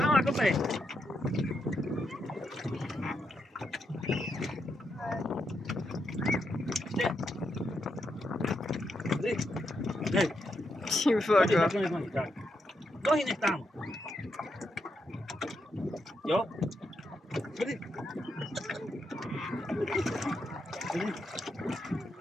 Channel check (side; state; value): both; normal; correlation 0.82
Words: kopej. Dej. Ty Chodźcie, voko. tak, nohy, tak. Nohy nech tam. Jo? Chodź.